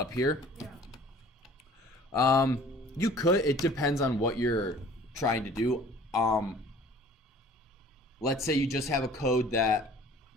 here? Yeah. You could. It depends on what you're trying to do. Let's say you just have a code that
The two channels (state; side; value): normal; both; correlation 0.49